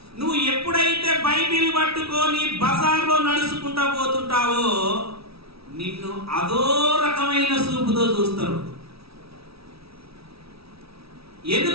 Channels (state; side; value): late; left; 0.76 ms